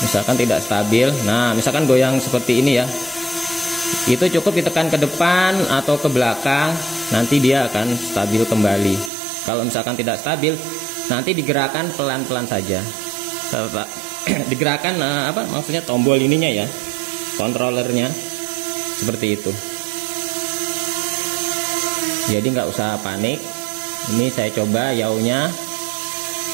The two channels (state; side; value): drops out; left; at 9.1 s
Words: misalkan tidak stabil. Nah, misalkan goyang seperti ini ya, itu cukup ditekan ke depan atau ke belakang, nanti dia akan stabil kembali. Kalau misalkan tidak stabil, nanti digerakkan pelan-pelan saja. Digerakkan maksudnya tombol ininya ya, kontrolernya, seperti itu. Jadi nggak usah panik. Ini saya coba yaunya.